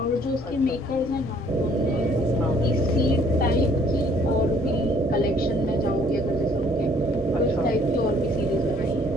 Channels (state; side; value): normal; both; correlation 0.60